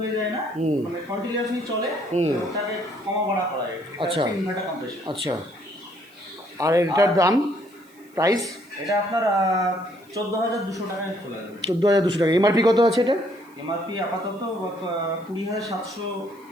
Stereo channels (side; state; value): right; noise; hiss, 30 dB below the sound